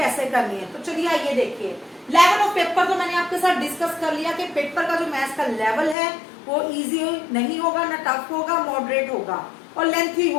करनी है। तो चलिए आइए देखिए, लेवल ऑफ पेपर तो मैंने आपके साथ डिस्कस कर लिया कि पेपर का जो मैथ्स का लेवल है वो इजी नहीं होगा, ना टफ होगा, मॉडरेट होगा और लेंथी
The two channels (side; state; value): right; drops out; at 6.0 s